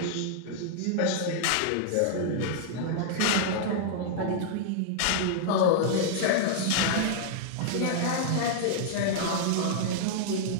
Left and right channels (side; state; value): both; different; correlation -0.01